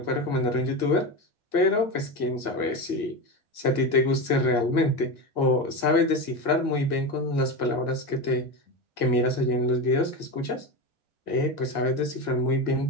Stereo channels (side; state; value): right; late; 1.8 ms